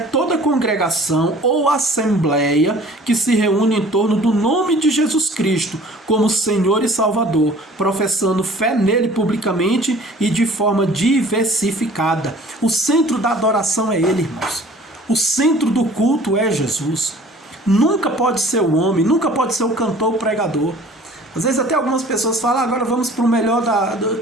congregação ou assembleia que se reúne em torno do nome de Jesus Cristo como Senhor e Salvador, professando fé nele publicamente e de forma diversificada. O centro da adoração é ele, irmãos. O centro do culto é Jesus. Nunca pode ser o homem, nunca pode ser o cantor, o pregador. Às vezes até algumas pessoas falam, agora vamos para o melhor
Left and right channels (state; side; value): normal; both; correlation 0.49